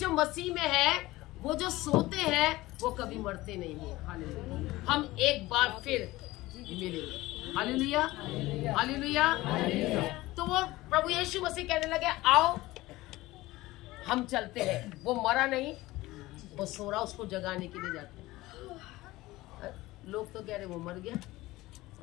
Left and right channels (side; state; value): right; quieter; 18.6 dB